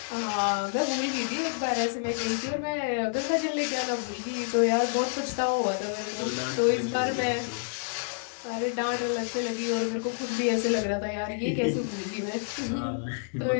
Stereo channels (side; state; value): right; silent; digital silence